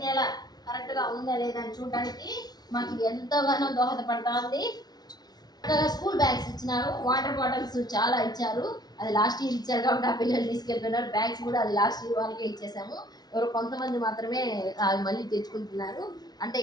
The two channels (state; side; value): late; right; 0.19 ms